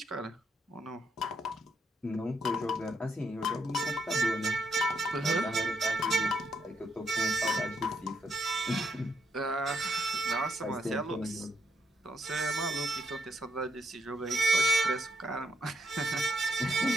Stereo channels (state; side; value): normal; both; correlation 0.78